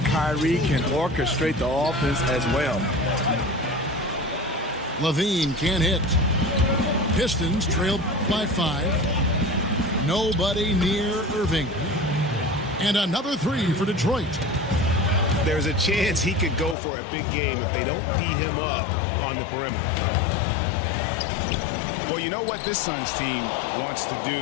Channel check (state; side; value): drops out; right; at 16.8 s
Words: can orchestrate the offense as well. Levine can't hit. Pistons trail by 5. Nobody near Irving. And another 3 for Detroit. There's a chance he could go for a big game if they don't D him up on the perimeter. Well, you know what this Suns team wants to